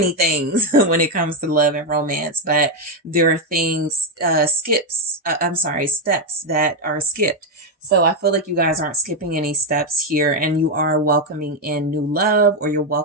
things when it comes to love and romance, but there are things, steps that are skipped. So I feel like you guys aren't skipping any steps here, and you are welcoming in new love, or you're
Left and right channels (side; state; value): both; normal; correlation 0.06